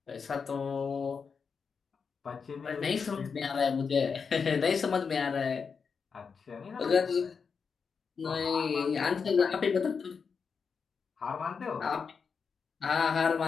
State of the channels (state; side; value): quieter; right; 5.7 dB